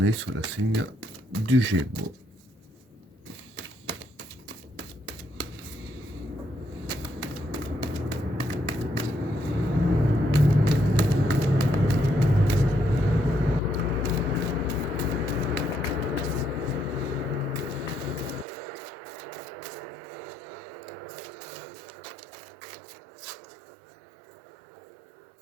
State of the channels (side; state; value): left; drops out; at 18.4 s